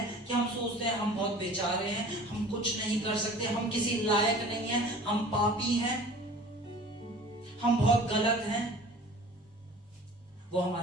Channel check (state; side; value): normal; both; correlation 0.44